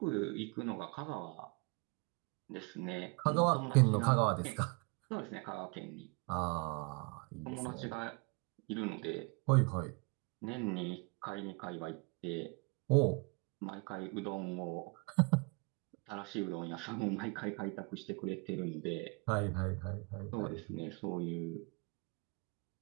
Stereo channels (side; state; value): left; quieter; 31.2 dB